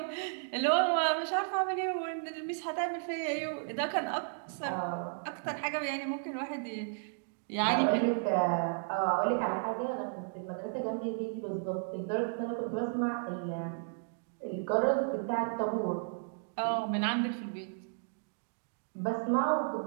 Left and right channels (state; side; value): silent; left; digital silence